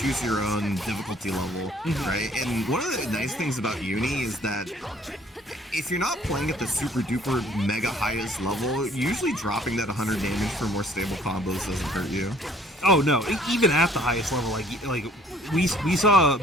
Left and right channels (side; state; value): both; normal; correlation 0.57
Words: your own difficulty level, right? And one of the nice things about Uni is that if you're not playing at the super duper mega highest level, usually dropping that 100 damage for more stable combos doesn't hurt you. Oh no, even at the highest level, like we saw